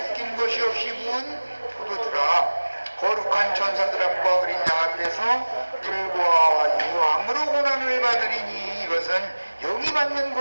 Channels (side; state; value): both; inverted; correlation -1.00